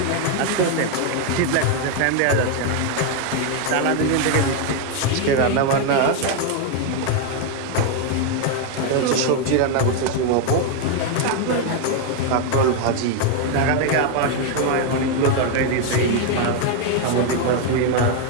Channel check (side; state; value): both; different; correlation 0.01